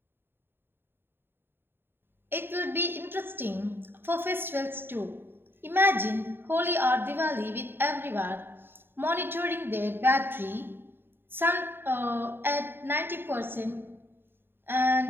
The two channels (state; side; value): late; left; 0.10 ms